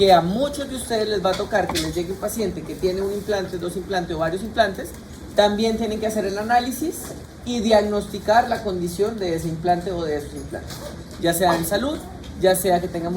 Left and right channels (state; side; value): identical; both; correlation 1.00